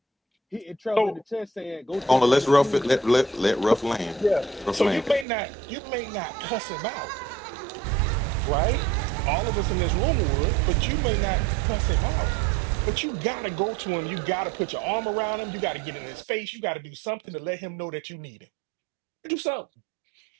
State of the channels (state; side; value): drops out; left; at 5.2 s